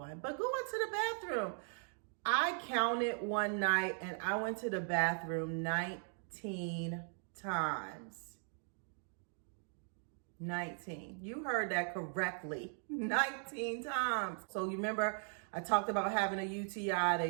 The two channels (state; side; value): silent; left; 52 dB below the other